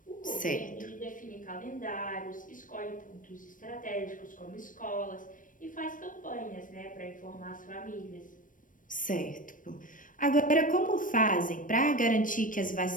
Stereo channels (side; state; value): right; late; 0.38 ms